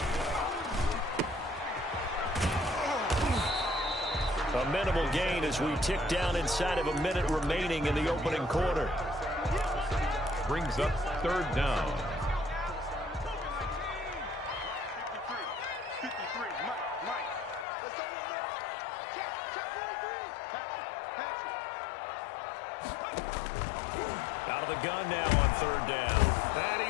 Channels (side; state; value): right; drops out; at 17.7 s